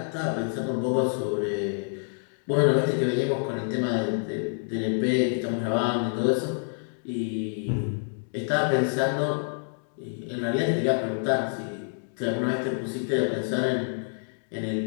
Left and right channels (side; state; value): right; silent; digital silence